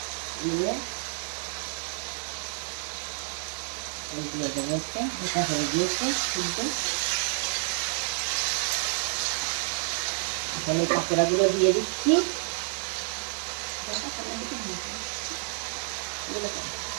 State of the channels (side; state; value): left; silent; digital silence